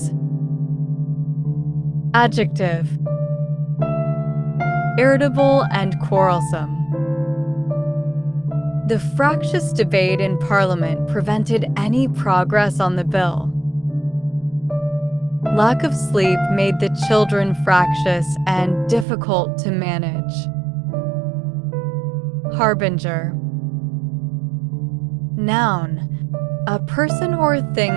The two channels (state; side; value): drops out; left; at 19.1 s